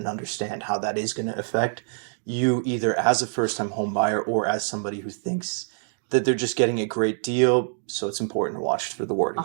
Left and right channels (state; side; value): silent; left; digital silence